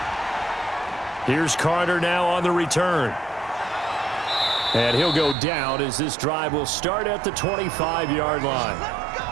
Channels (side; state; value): left; drops out; at 5.4 s